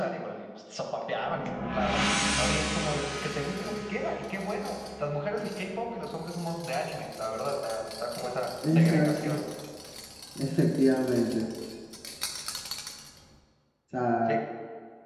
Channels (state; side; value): identical; both; correlation 1.00